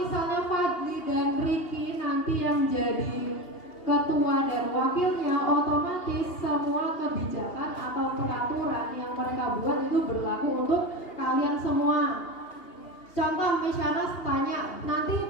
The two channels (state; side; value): late; right; 2.8 ms